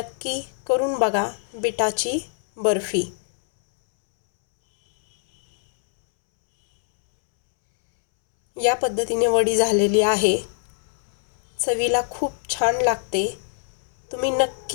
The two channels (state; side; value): silent; right; 64 dB below the other